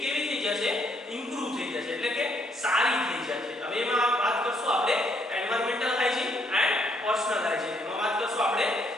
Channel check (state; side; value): normal; both; correlation 0.70